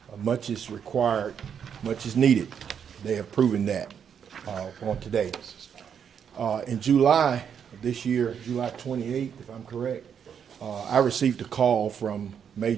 Much is required, much is needed. They have proven that on today. In July of this year, July 28th, if I'm correct, I received a call from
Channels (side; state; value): left; quieter; 7.8 dB